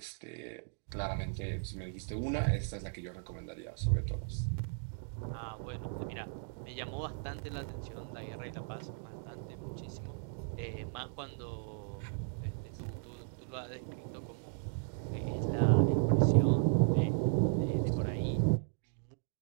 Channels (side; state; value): left; silent; digital silence